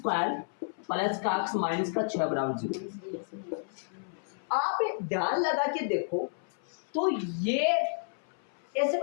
प्लस का x माइनस का 6 बराबर 0। आप ध्यान लगा के देखो तो ये ऐसे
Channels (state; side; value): silent; right; 57 dB below the other